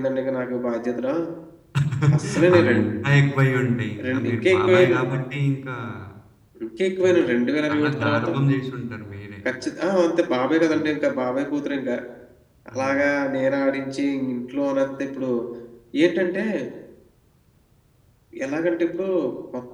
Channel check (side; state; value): both; identical; correlation 1.00